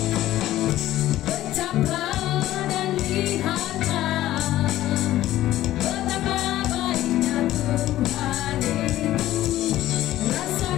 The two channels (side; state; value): right; quieter; 14.4 dB